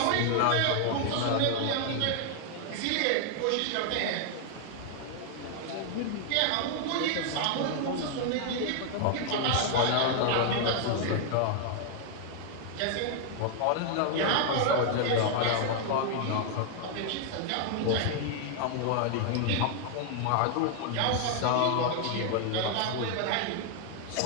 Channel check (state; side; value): different; both; correlation 0.00